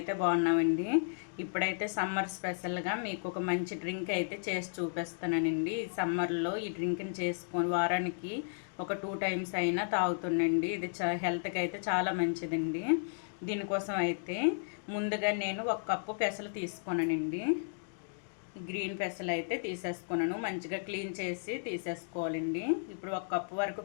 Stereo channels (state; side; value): silent; right; digital silence